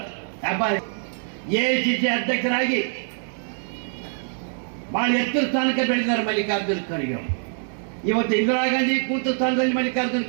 AICC ಅಧ್ಯಕ್ಷರಾಗಿ ಬಹಳ ಎತ್ತರ ಸ್ಥಾನಕ್ಕೆ ಬೆಳೆದಿದ್ದಾರೆ ಮಲ್ಲಿಕಾರ್ಜುನ ಖರ್ಗೆ ಅವರು. ಇವತ್ತು ಇಂದಿರಾ ಗಾಂಧಿ ಕೂತ ಸ್ಥಾನದಲ್ಲಿ ಮಲ್ಲಿಕಾರ್ಜುನ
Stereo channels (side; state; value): left; silent; digital silence